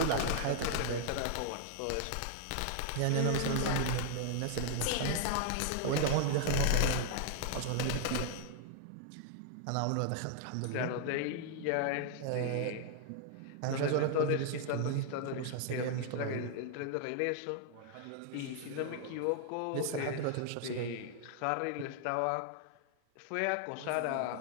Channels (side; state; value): both; different; correlation 0.00